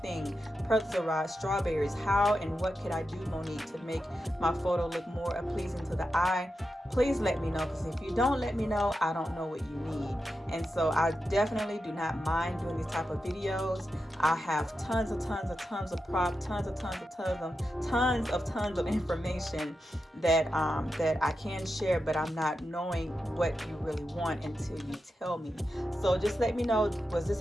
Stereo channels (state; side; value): normal; both; correlation 0.89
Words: thing, pretzel strawberries, how and what could I do, Monique, to make my photo look more pleasing to the eye? Please let me know, because if you don't let me know, I don't know what you need. And so I definitely do not mind doing these type of videos. I have tons of props, tons of information that that I can share, but I'm not knowing what you really want until you tell me. So just let me know, was this